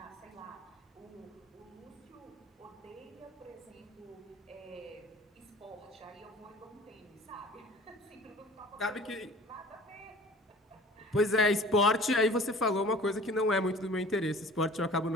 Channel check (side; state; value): both; normal; correlation 0.45